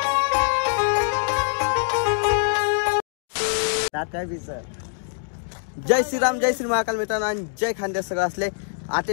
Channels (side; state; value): right; silent; digital silence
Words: जय श्रीराम, जय श्री महाकाल मित्रांनो आणि जय खानदेश सगळं असले.